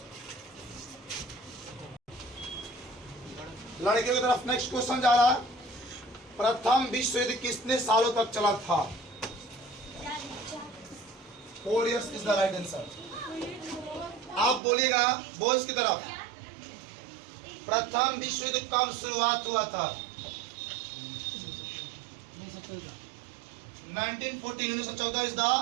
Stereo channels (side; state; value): left; drops out; at 14.6 s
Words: लड़कियों की तरफ नेक्स्ट क्वेश्चन जा रहा है। प्रथम विश्व युद्ध कितने सालों तक चला था? 4 years is the right answer. आप बोलिएगा बॉयज की तरफ। प्रथम विश्व युद्ध कब शुरुआत हुआ था? 1914 इज द